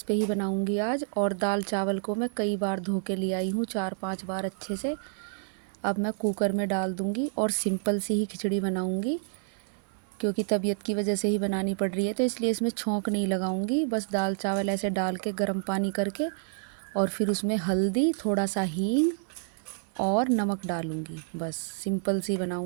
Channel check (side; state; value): left; silent; digital silence